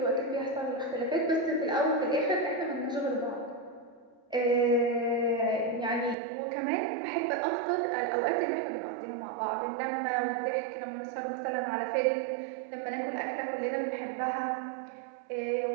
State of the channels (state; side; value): drops out; left; at 6.2 s